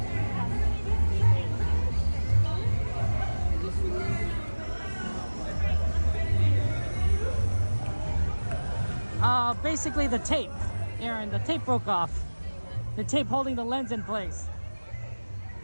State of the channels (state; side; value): inverted; both; correlation -1.00